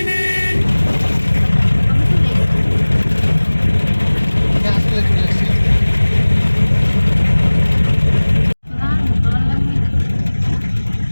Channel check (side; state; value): both; inverted; correlation -1.00